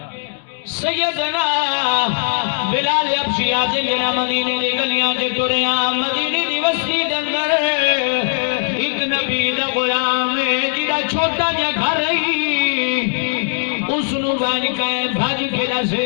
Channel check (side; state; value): right; silent; digital silence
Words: سیدنا بلال حبشی آتے جنا مدینے دی گلیاں تے ٹریاں مدینے دی بستی دے اندر ایک نبی دا غلام ہے جڑا چھوٹا جا گھر اس نو بن کے بھج کے